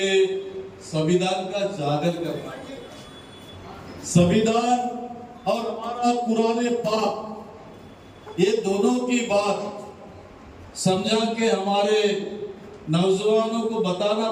संविधान का जागर करना है। संविधान और हमारा कुरान पाक, ये दोनों की बात समझा के हमारे नौजवानों को बताना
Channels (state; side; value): identical; both; correlation 1.00